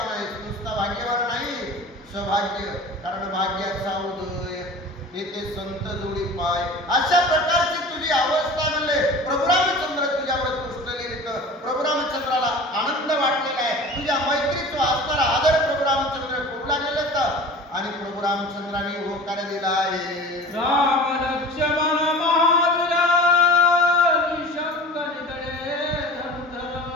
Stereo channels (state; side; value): normal; both; correlation 0.38